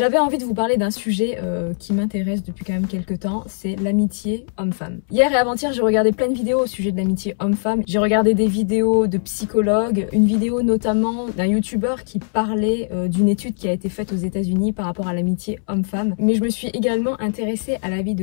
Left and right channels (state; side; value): silent; right; 65 dB below the other